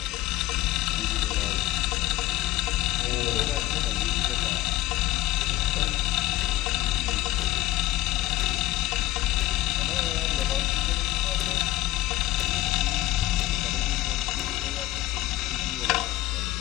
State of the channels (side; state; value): right; quieter; 16.8 dB